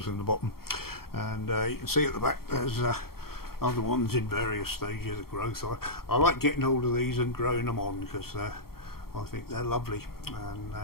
in the bottom, and you can see at the back there's other ones in various stages of growth. I like getting hold of these and growing them on because I think they're lovely, and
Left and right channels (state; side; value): late; right; 0.94 ms